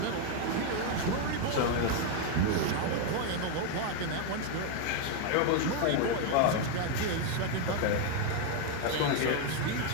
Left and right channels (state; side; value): different; both; correlation 0.01